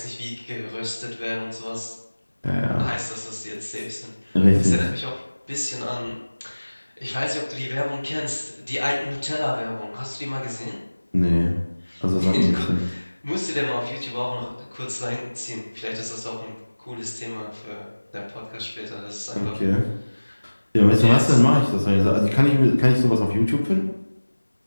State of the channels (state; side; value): inverted; both; correlation -1.00